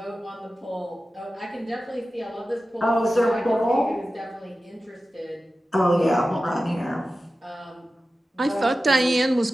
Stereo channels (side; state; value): both; normal; correlation 0.94